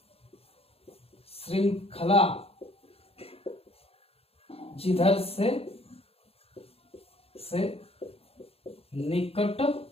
श्रृंखला जिधर से निकट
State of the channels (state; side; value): late; right; 0.28 ms